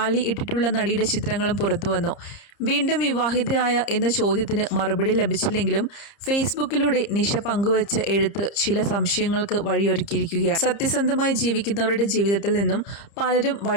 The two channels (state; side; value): late; right; 30 ms